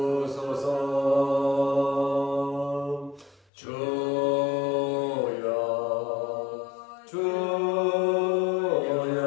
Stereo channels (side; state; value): right; drops out; at 3.5 s